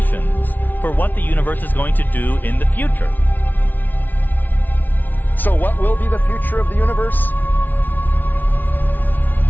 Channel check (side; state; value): right; late; 0.084 ms